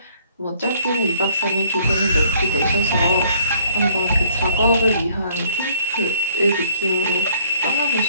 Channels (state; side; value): inverted; both; correlation -0.63